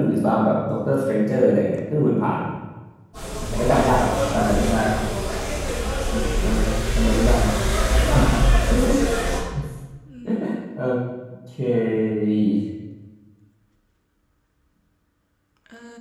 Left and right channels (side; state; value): both; identical; correlation 1.00